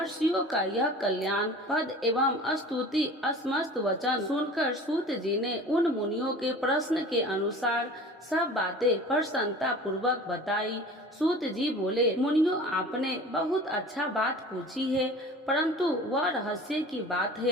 का यह कल्याण पद एवं स्तुति असमस्त वचन सुनकर सूत जी ने उन मुनियों के प्रश्न के अनुसार सब बातें प्रसन्नता पूर्वक बताई। सूत जी बोले, मुनियों, आपने बहुत अच्छा बात पूछी है, परंतु वह रहस्य की बात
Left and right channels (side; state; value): both; normal; correlation 0.41